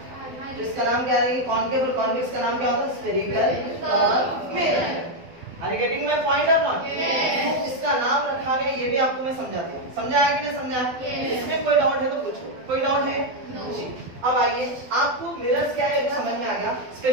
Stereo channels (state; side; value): late; left; 12 ms